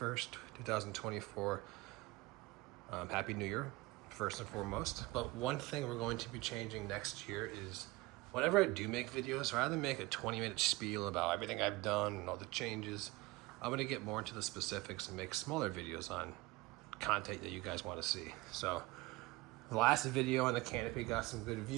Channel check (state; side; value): quieter; left; 21.6 dB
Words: 2024. Happy New Year, first and foremost. But one thing we're going to be changing next year is whenever I do make videos, rather than make a 20-minute spiel about everything I've done and all the changes, I'm going to get more into the specifics and make smaller videos on content that you guys want to see. So the last video on the canopy got some good